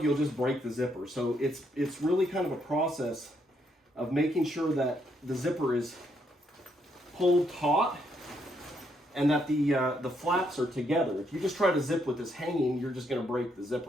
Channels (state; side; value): normal; both; correlation 0.75